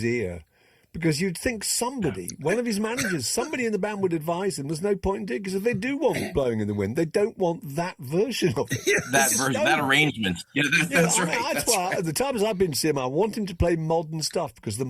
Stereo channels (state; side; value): identical; both; correlation 1.00